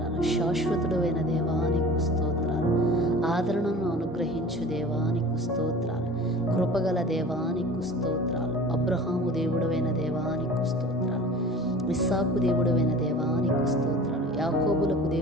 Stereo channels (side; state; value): both; normal; correlation 0.41